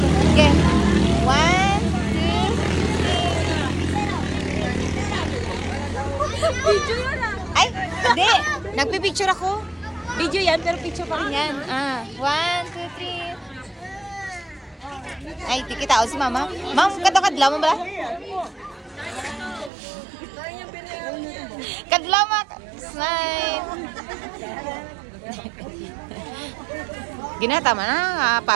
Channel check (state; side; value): drops out; left; at 19.7 s